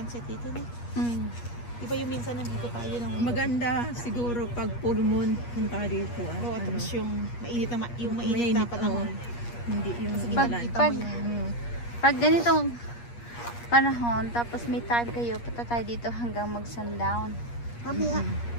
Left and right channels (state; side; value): late; right; 8.4 ms